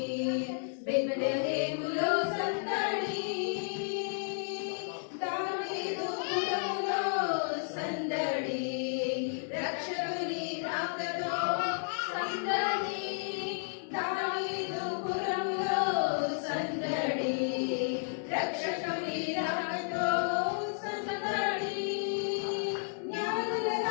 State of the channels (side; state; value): right; silent; 56 dB below the other